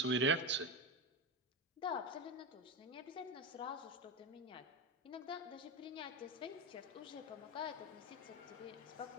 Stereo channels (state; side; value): normal; both; correlation 0.16